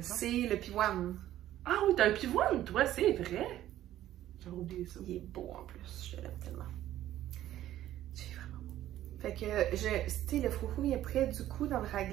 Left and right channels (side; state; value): left; quieter; 13.1 dB